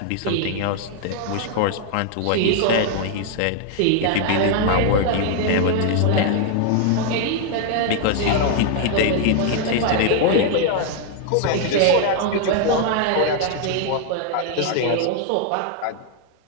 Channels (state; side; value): different; both; correlation 0.00